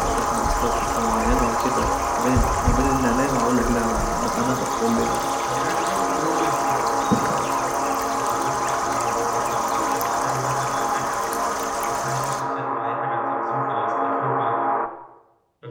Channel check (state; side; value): identical; both; correlation 1.00